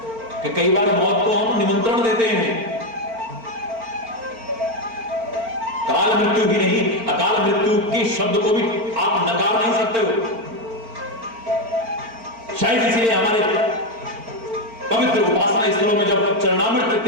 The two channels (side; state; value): left; late; 4.4 ms